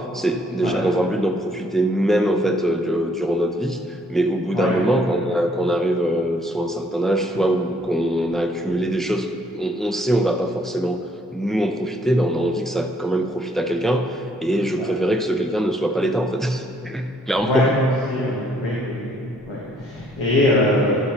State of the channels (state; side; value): normal; both; correlation 0.65